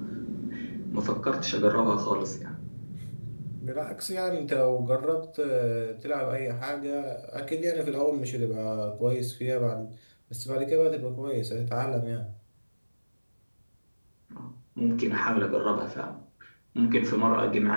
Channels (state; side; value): inverted; both; correlation -1.00